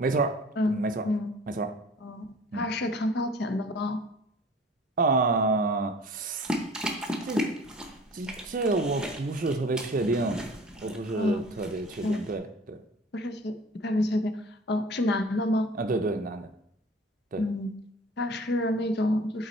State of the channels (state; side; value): normal; both; correlation 0.46